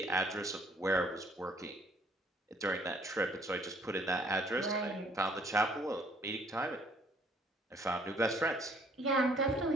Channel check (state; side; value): normal; both; correlation 0.61